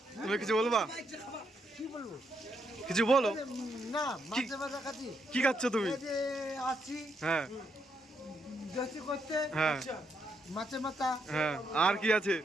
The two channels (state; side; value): normal; both; correlation 0.78